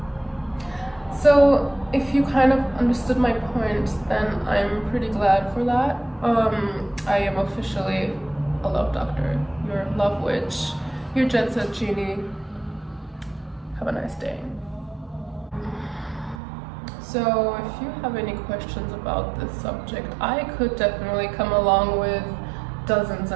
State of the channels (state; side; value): drops out; left; at 16.4 s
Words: So if you kind of understood my point, then I'm pretty glad for that. I am officially a love doctor, your love witch, your jet set genie. Have a nice day. So if you have any questions about this subject, I could definitely come along with dozens